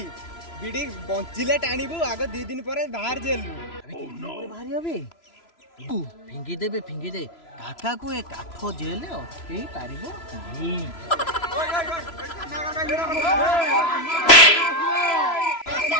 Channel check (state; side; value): late; right; 3.0 ms